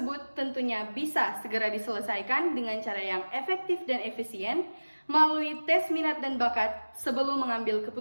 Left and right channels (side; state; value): both; inverted; correlation -1.00